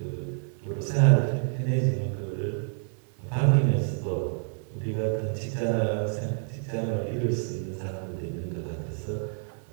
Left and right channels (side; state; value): left; silent; 59 dB below the other